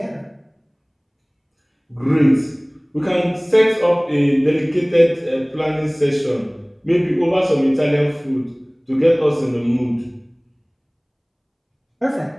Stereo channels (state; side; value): identical; both; correlation 1.00